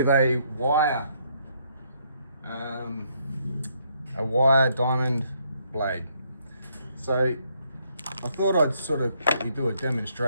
a wire diamond blade. So I thought I'd sort of quickly do a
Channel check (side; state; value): both; inverted; correlation -0.71